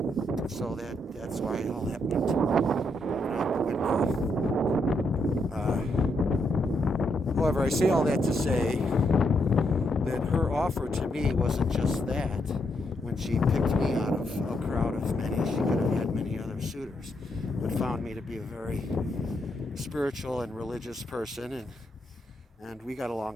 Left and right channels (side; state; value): both; normal; correlation 0.78